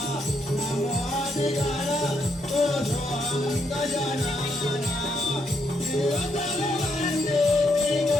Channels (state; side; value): normal; both; correlation 0.76